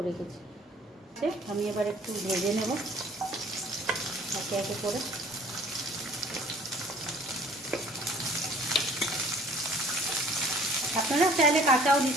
রেখেছি, আমি এবার একটু ভেজে নেব একে একে করে। আপনারা চাইলে কাঁচাও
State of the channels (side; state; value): both; normal; correlation 0.53